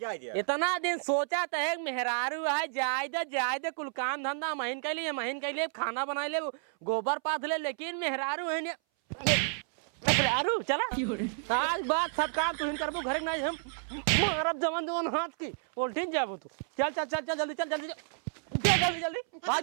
दिया इतना दिन सोचा है मेहरारू है जाए दे कुल काम धंधा महीन के लिए खाना बना ले गोबर पाथ ले, लेकिन मेहरारू है मेहरारू चला आज बात सब काम तुम करबो घर नहीं हम मारब जवन जवन हाथ की उल्टीन जाबो तू चल चल चल चल जल्दी चल जल्दी जल्दी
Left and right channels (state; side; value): silent; left; 57 dB below the other